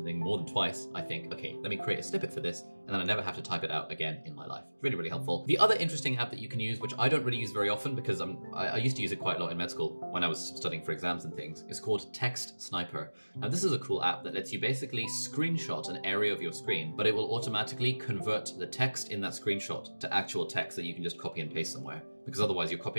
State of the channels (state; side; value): inverted; both; correlation -1.00